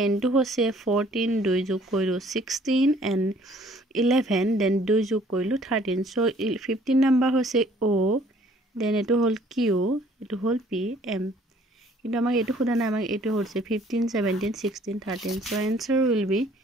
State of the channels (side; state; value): both; normal; correlation 0.58